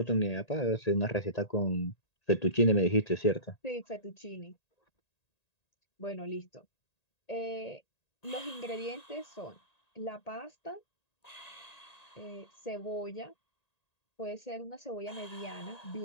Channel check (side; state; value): right; late; 1.8 ms